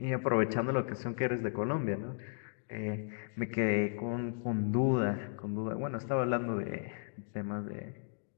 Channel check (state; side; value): silent; right; digital silence